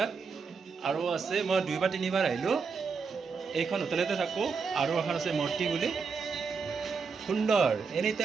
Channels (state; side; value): quieter; left; 5.3 dB